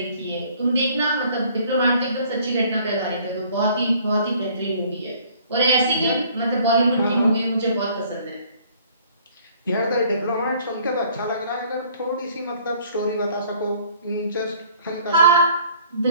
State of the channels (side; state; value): both; inverted; correlation -0.57